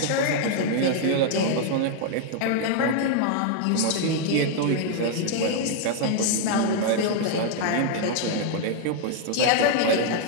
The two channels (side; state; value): both; different; correlation 0.00